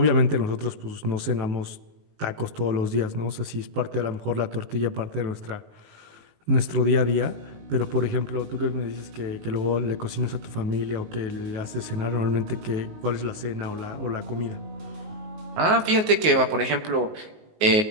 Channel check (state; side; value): late; left; 19 ms